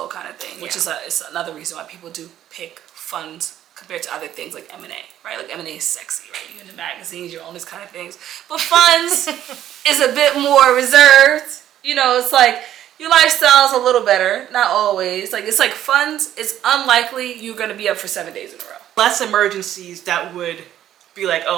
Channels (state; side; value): quieter; left; 11.7 dB